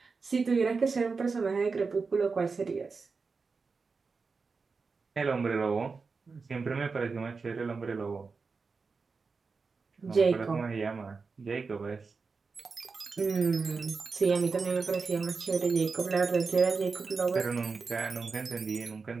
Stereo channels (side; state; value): left; quieter; 4.6 dB